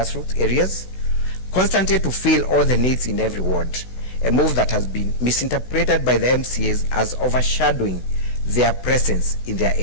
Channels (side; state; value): right; late; 16 ms